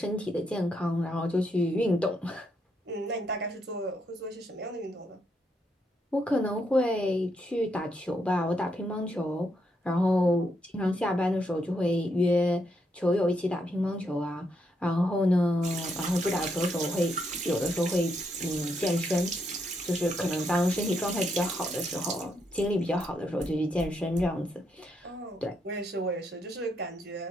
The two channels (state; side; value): normal; both; correlation 0.78